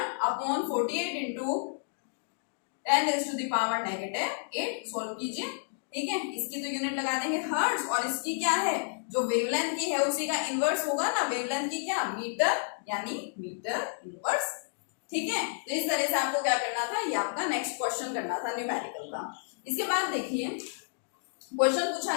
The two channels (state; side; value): silent; right; digital silence